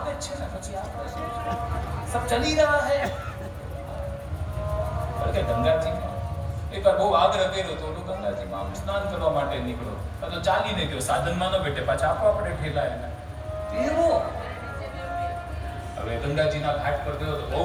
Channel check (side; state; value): both; identical; correlation 1.00